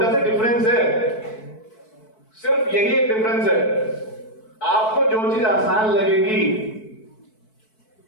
सा डिफरेंस है, सिर्फ यही एक डिफरेंस है। आपको जो चीज आसान लगेगी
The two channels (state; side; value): late; right; 4.6 ms